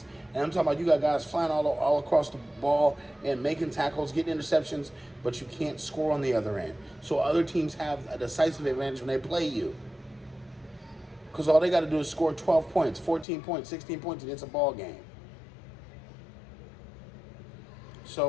And I'm talking about you got guys flying all across the ball and making tackles, getting interceptions, but you can't score on the other end. So other teams have a decisive advantage when they play you. Because all they got to do is score 12 points, 14 points, 16 points, and it's a ball game.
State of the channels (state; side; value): drops out; right; at 13.2 s